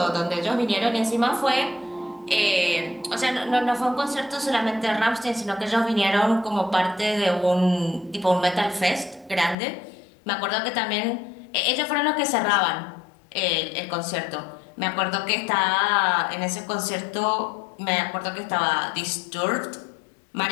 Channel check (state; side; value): drops out; right; at 9.6 s